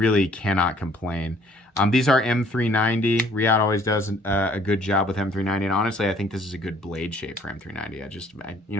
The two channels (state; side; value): normal; both; correlation 0.59